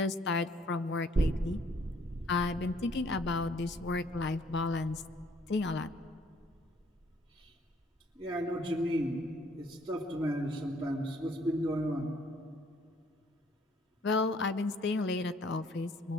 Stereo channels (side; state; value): both; normal; correlation 0.63